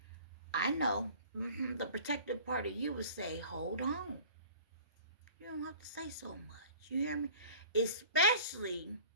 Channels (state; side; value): inverted; both; correlation -0.46